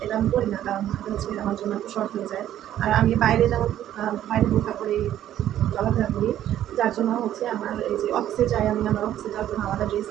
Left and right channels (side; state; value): left; quieter; 11.8 dB